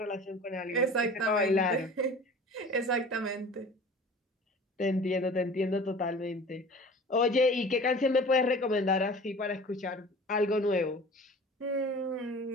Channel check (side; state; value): both; normal; correlation 0.42